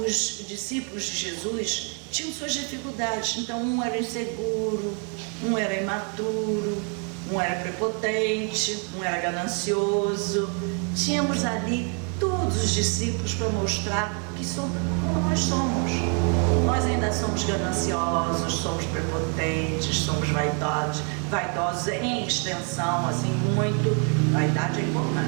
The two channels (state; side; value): quieter; left; 39.7 dB